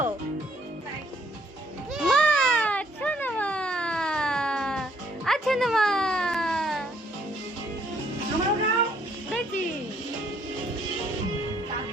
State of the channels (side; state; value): both; normal; correlation 0.65